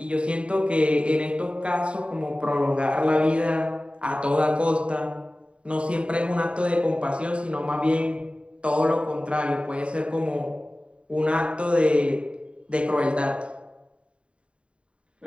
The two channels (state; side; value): late; left; 0.059 ms